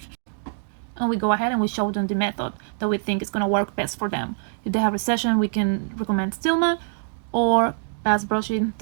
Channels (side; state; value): left; silent; digital silence